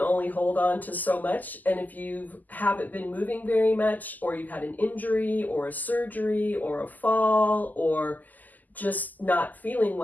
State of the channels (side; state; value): right; late; 0.083 ms